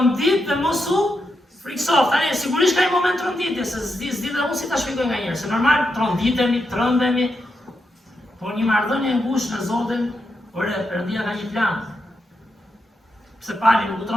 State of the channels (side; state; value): both; normal; correlation 0.84